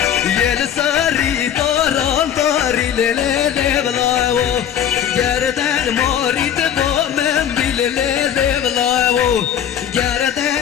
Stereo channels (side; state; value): right; quieter; 9.5 dB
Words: يلساري طاري ليل ضلاو جردن موري تبو من بالليل ضلاو